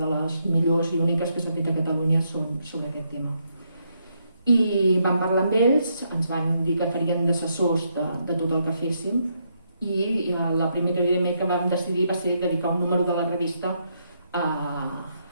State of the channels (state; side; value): inverted; both; correlation -0.77